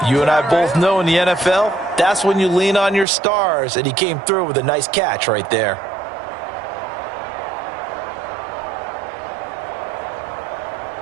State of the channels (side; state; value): left; drops out; at 3.1 s